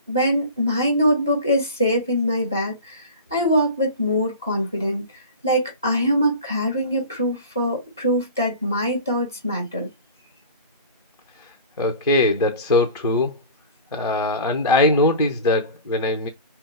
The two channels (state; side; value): inverted; both; correlation -0.36